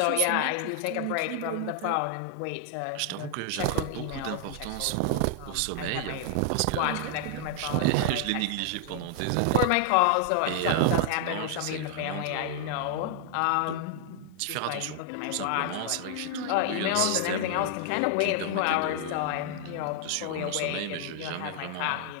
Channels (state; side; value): different; both; correlation 0.00